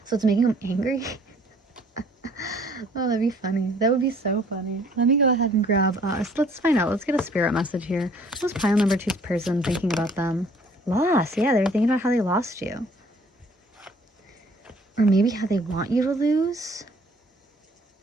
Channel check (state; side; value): normal; both; correlation 0.57